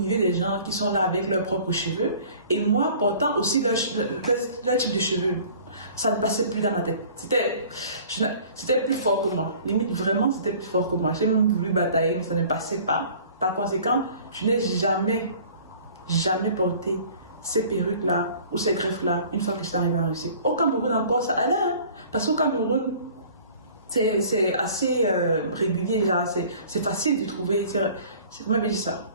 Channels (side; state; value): both; inverted; correlation -0.49